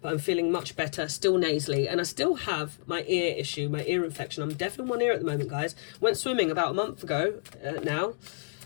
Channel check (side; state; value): right; silent; digital silence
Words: I'm feeling much better, still nasally. And I still have my ear issue, my ear infection. I'm deaf in one ear at the moment, guys. Went swimming about a month ago now.